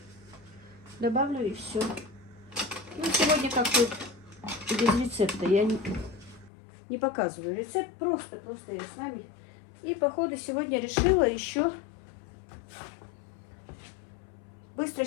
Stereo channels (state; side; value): drops out; right; at 6.5 s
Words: добавлю, и все. Ну, сегодня как тут без рецепта. Я не показываю рецепт, просто я с вами. И по ходу сегодня решила еще быстро